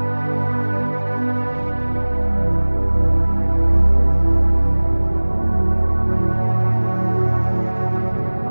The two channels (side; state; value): both; inverted; correlation -1.00